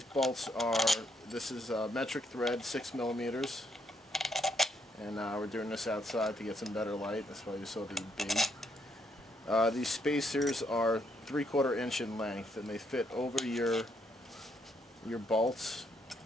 bolts are, this is metric thread, 6mm, and we're doing this outside to get some better light. That's why you saw the B. These spacers are 3/4 inch in length, and they fit over your bolts.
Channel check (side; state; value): both; normal; correlation 0.74